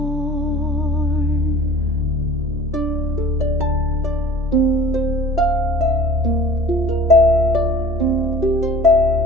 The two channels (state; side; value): normal; both; correlation 0.45